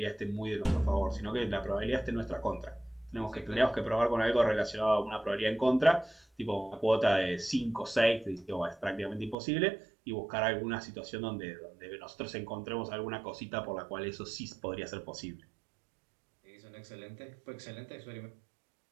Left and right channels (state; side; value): drops out; left; at 9.3 s